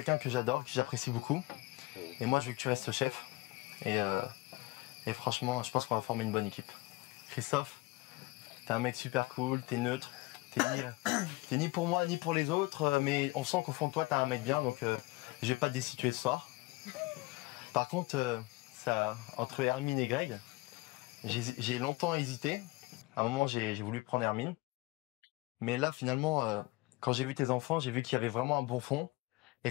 que j'adore, que j'apprécie beaucoup. Et moi, je veux que tu restes chef. Et franchement, je pense qu'on va former une bonne équipe. Christophe, t'es un mec super cool, t'es neutre, t'es ni pour moi ni pour les autres, mais on sent qu'au fond de toi, t'es un mec bien, donc je vais pas te destituer ce soir. Par contre, entre Hermine et Greg, j'ai longtemps hésité, À un moment, j'ai voulu prendre Hermine. Mais là, finalement, quand j'ai vu tes enfants, j'ai vu qu'il y avait vraiment un bon fond. Et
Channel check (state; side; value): quieter; right; 22.5 dB